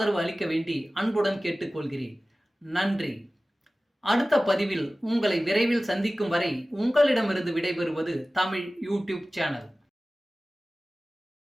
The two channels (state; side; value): normal; both; correlation 0.97